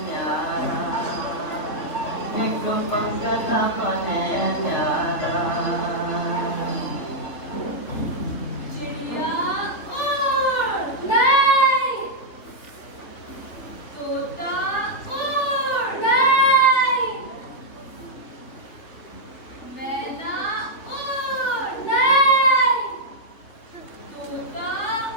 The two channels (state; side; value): late; right; 3.5 ms